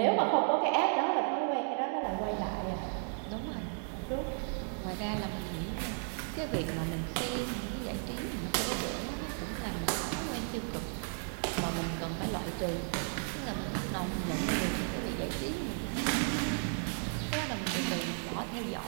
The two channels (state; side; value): silent; left; 55 dB below the other